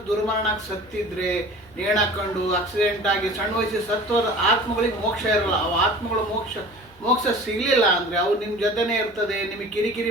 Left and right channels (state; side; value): noise; right; hum, 28 dB below the sound